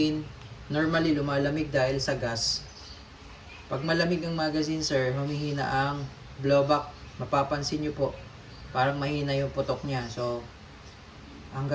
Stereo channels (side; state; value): both; identical; correlation 1.00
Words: normally lumalamig dahil sa gas. Pag malamig ang magazine, sir, humihina ang blowback. Mapapansin nyo po, parang mahina yung putok niya. So, ang